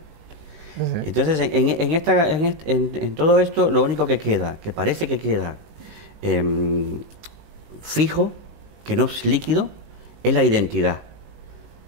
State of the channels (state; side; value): late; left; 19 ms